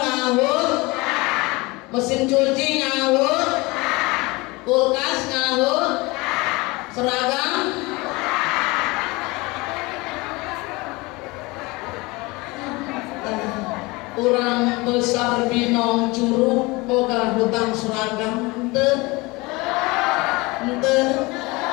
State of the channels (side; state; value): right; quieter; 23.9 dB